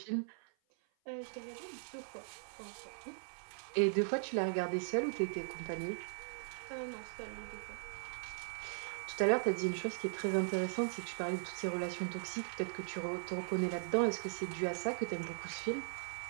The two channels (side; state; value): left; silent; 52 dB below the other